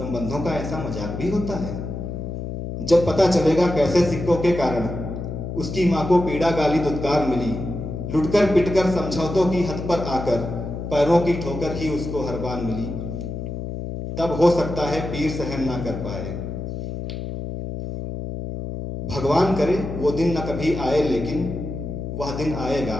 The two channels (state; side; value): noise; left; hum, 6 dB below the sound